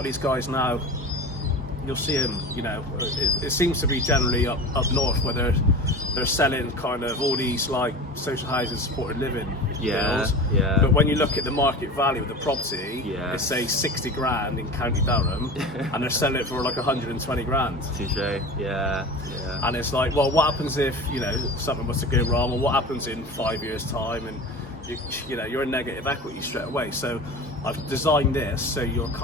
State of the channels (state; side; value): normal; both; correlation 0.33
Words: these guys now, you'll see them, you know, it seems to be generally up north, where they're selling kind of all these like social housing supported living deals. But when you look at the market value of the property, it's say 60 grand in County Durham, and they're selling it for like 120 grand. Touche. And it's like, well, what happens if, you know, something was to go wrong, or what happens in 5 years' time, and you know, you're in negative equity straight away. So I've designed this so you're